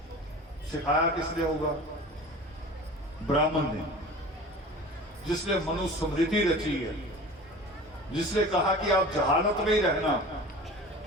सिखाया किसने होगा? ब्राह्मण ने, जिसने मनुस्मृति रची है, जिसने कहा कि आप जहालत में ही रहना,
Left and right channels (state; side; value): normal; both; correlation 0.38